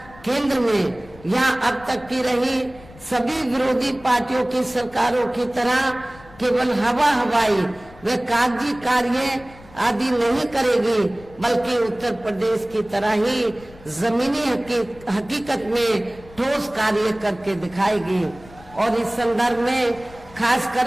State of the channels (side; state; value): left; noise; rumble, 22 dB below the sound